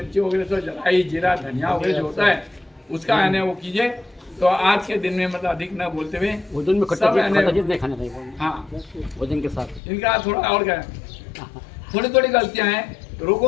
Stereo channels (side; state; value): right; drops out; at 9.8 s